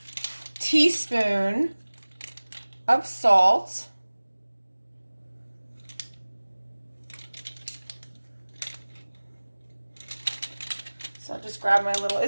teaspoon of salt. So I'll just grab my little,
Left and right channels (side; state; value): both; inverted; correlation -1.00